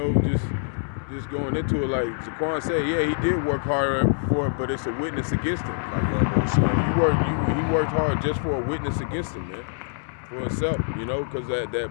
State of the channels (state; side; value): silent; right; digital silence